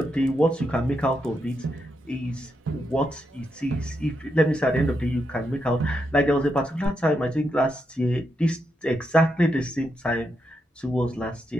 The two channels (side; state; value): both; normal; correlation 0.83